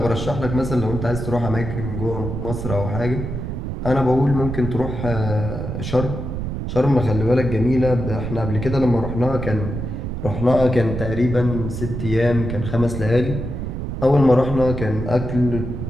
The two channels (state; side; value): noise; right; rumble, 5 dB below the sound